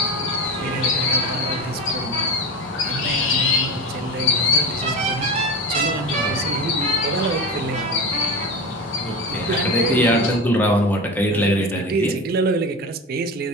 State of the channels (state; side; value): normal; both; correlation 0.26